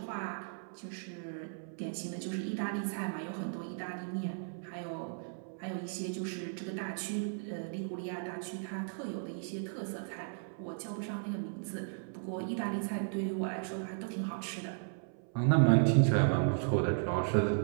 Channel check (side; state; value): left; silent; 54 dB below the other